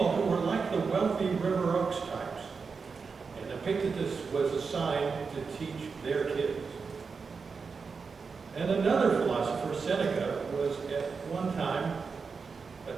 who were like the wealthy River Oaks types, and Epictetus was assigned to teach their kids. And another philosopher, Seneca, was at one time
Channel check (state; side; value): quieter; left; 5.1 dB